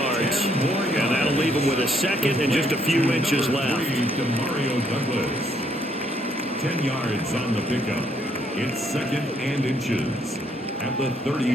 And that'll leave him with a 2nd and just a few inches left. To Mario Douglas. 10 yards on the pickup. It's 2nd and inches at the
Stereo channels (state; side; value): normal; both; correlation 0.70